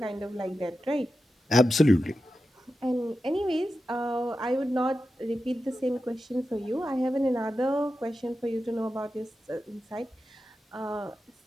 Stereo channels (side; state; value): both; normal; correlation 0.91